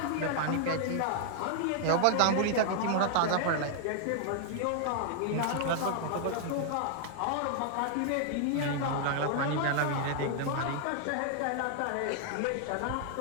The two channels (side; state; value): both; different; correlation 0.00